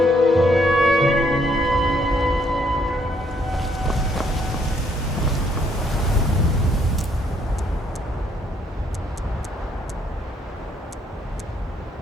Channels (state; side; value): normal; both; correlation 0.69